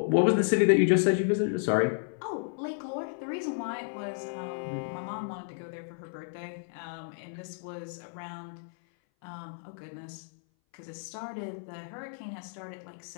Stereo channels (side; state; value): right; silent; 57 dB below the other